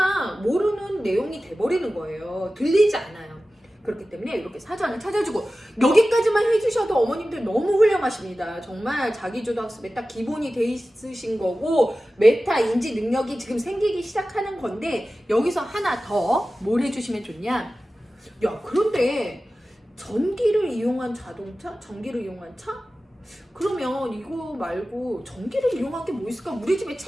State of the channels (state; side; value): normal; both; correlation 0.95